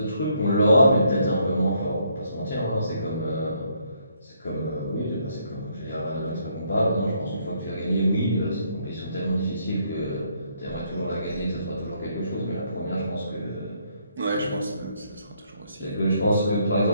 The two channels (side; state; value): both; inverted; correlation -0.71